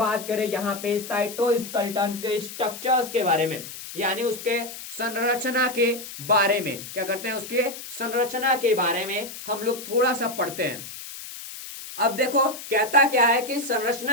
करें यहाँ पे साइटोस्केलेटन के स्ट्रक्चर्स के बारे में, यानी उसके संरचना के बारे में। क्या करते हैं? उसके संरचना के बारे में हम लोग थोड़ा सा पढ़ते हैं। अब देखो कहता क्या है कि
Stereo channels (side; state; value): left; noise; hiss, 12 dB below the sound